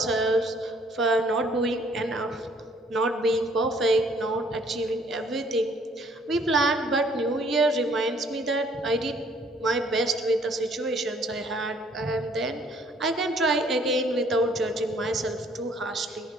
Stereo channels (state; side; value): normal; both; correlation 0.61